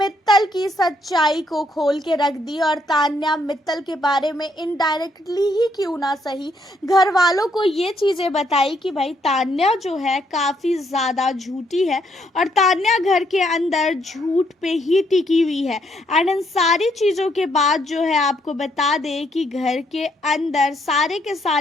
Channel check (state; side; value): normal; both; correlation 0.72